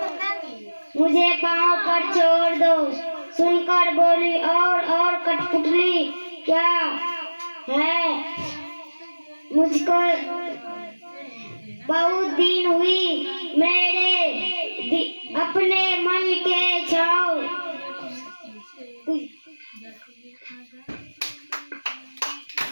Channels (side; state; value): both; inverted; correlation -1.00